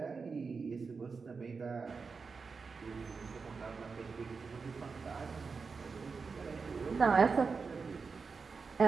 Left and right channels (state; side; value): quieter; left; 4.9 dB